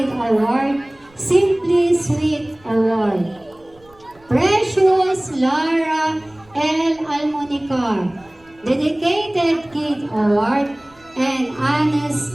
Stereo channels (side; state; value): right; noise; rumble, 29 dB below the sound